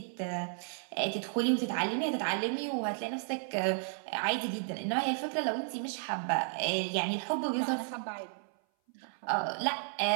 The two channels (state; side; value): silent; left; 56 dB below the other